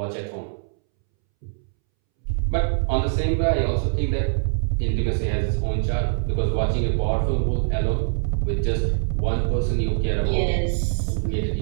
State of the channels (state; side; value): silent; left; 63 dB below the other